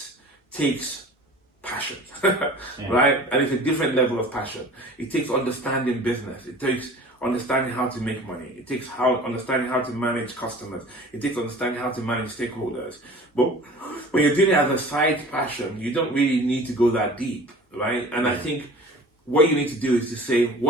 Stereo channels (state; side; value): normal; both; correlation 0.43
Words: takes passion, right? And it's a different level of passion. It takes understanding business. It takes understanding how to make money. It takes understanding how to manage customers. It takes understanding how to manage stakeholders. But when you're doing it as a side passion, you don't really need to go that deep, right? And I think what you need to do is to say,